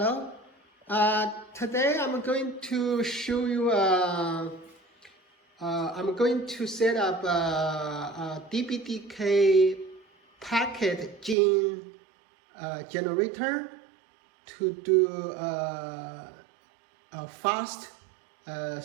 Today I'm going to show you. I'm going to set up a DPDK Pktgen generator to do a fast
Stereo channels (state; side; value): drops out; left; at 11.4 s